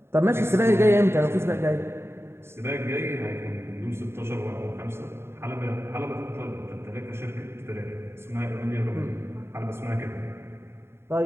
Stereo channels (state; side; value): late; left; 0.12 ms